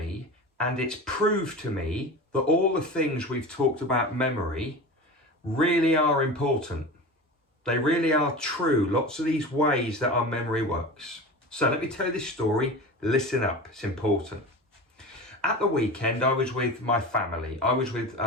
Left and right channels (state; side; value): normal; both; correlation 0.30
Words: and it's proved to me that all the things we've talked about memory really are important. They really are true, lots of these ways that our memory works. So let me tell you this story. Listen up, it's important. At the weekend, I was with my family. I was with